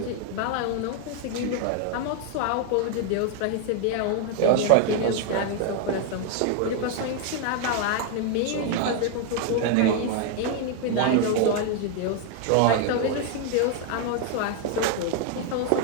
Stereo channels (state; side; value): different; both; correlation 0.00